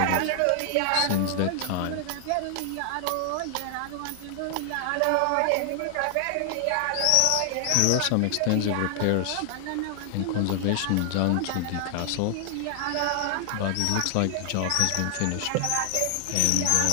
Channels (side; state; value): both; different; correlation 0.00